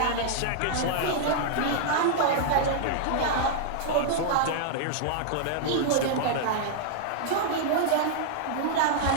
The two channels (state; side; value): different; both; correlation -0.01